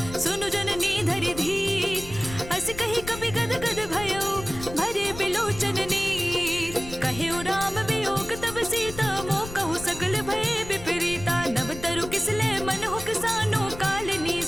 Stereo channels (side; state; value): left; noise; rumble, 12 dB below the sound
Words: सुनु जननी धरि धीर। अस कही कपि गद गद भयो, भरे बिलोचन नीर। कहे राम वियोग तब सीता, मोह कहु सकल भय विपरीता। नव तरु किसले मन हो किसानो, कालिनी